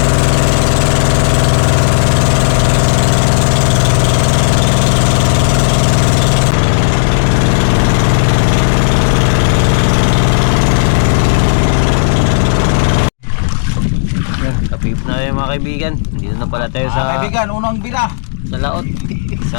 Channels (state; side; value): silent; right; digital silence